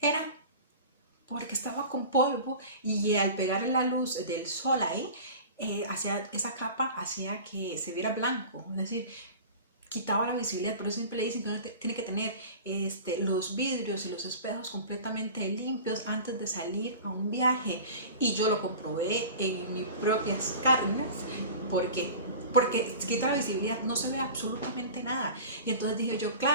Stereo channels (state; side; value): inverted; both; correlation -0.37